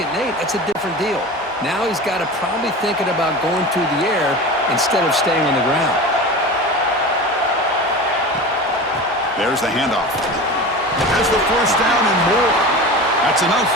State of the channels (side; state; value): both; normal; correlation 0.32